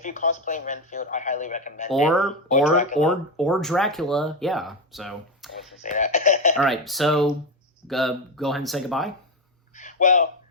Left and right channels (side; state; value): both; normal; correlation 0.11